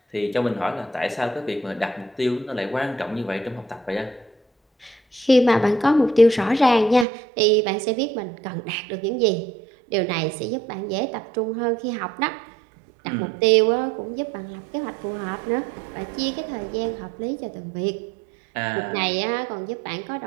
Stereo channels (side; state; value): left; drops out; at 7.1 s